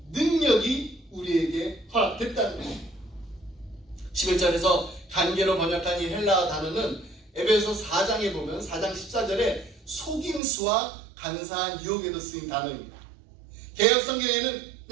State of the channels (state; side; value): drops out; left; at 10.4 s